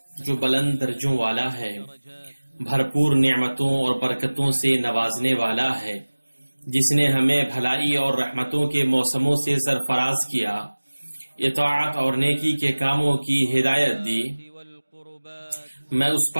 جو بلند درجوں والا ہے، بھرپور نعمتوں اور برکتوں سے نوازنے والا ہے، جس نے ہمیں بھلائی اور رحمتوں کے موسموں سے سرفراز کیا، اطاعت اور نیکی کے کاموں کی ہدایت دی۔ میں اس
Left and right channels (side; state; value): both; inverted; correlation -1.00